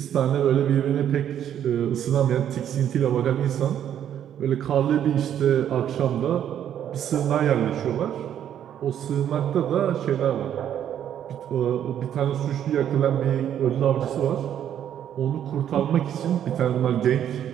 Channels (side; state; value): left; quieter; 10.0 dB